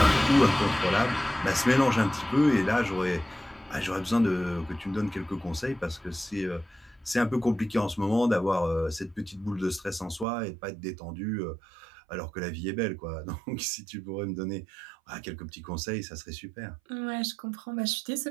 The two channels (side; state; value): left; drops out; at 10.2 s